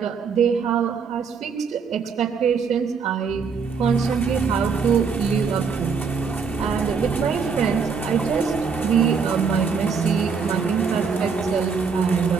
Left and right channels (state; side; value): quieter; left; 5.7 dB